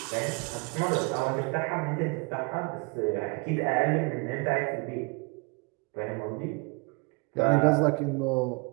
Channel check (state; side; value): quieter; left; 29.8 dB